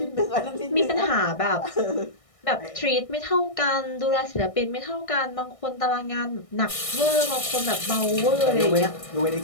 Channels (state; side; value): late; right; 1.6 ms